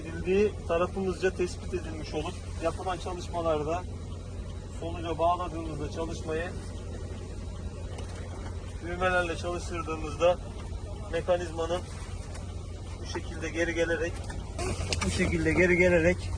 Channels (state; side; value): identical; both; correlation 1.00